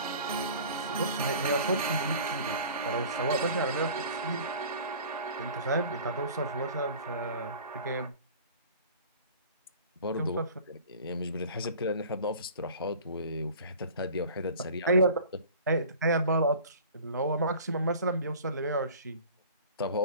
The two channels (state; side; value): inverted; both; correlation -0.43